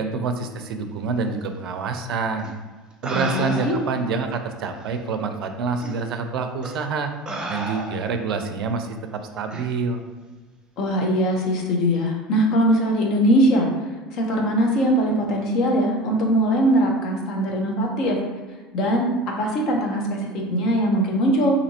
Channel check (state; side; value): normal; both; correlation 0.35